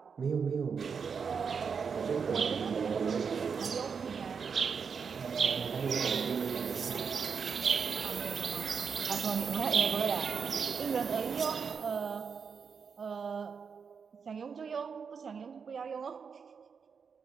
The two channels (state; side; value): quieter; left; 6.1 dB